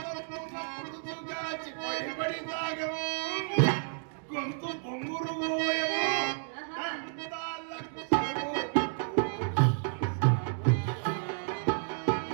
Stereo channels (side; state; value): left; silent; digital silence